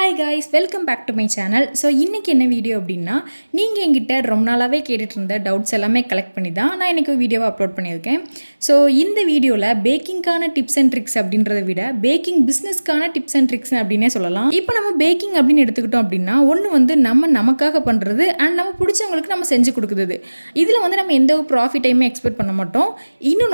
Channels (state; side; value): inverted; both; correlation -1.00